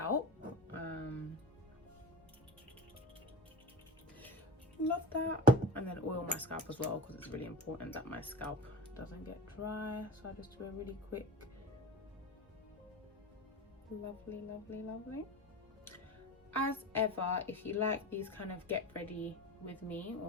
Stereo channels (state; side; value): normal; both; correlation 0.29